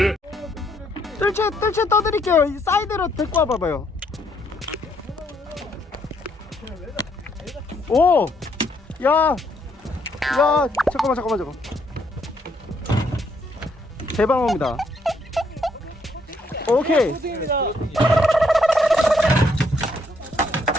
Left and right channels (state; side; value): normal; both; correlation 0.71